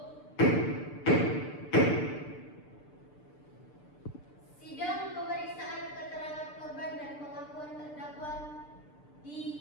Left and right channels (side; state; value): right; late; 6.8 ms